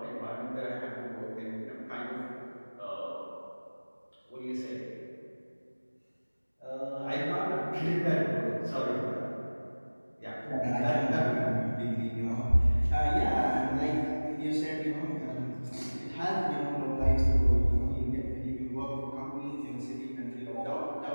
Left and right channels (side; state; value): both; inverted; correlation -1.00